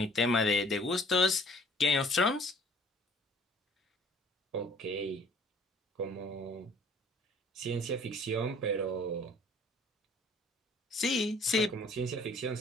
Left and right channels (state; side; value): normal; both; correlation 0.55